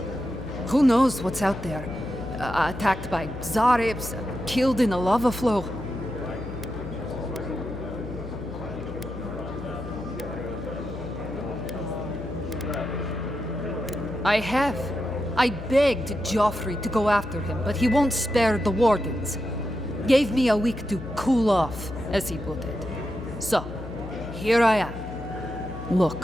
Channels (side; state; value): left; noise; hum, 11 dB below the sound